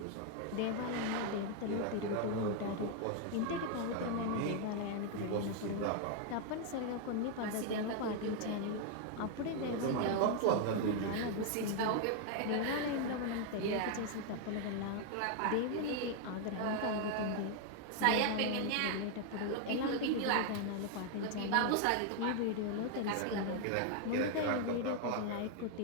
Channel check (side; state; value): both; different; correlation 0.00